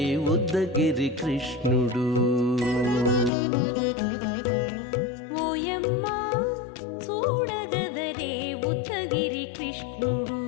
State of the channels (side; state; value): right; drops out; at 3.3 s